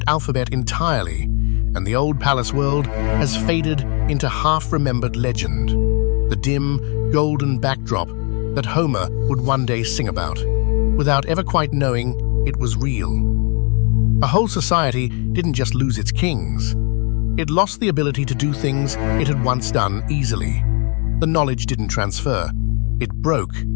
alphabet entirely, and the old palace world has faded into half-remembered legend, the dim, golden backdrop that Homer would one day sing about, without ever quite knowing it was real. A whole society didn't just lose its kings. It lost the ability to do things it had once done easily. The knowledge didn't transfer. It broke,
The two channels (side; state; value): right; quieter; 36.4 dB